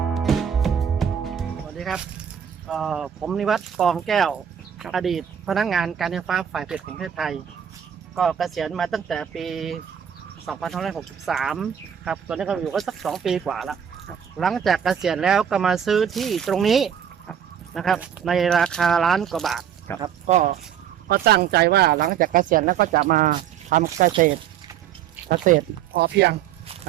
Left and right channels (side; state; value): left; quieter; 8.8 dB